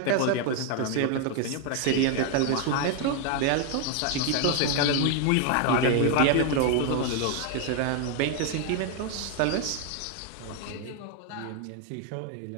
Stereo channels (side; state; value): both; different; correlation 0.01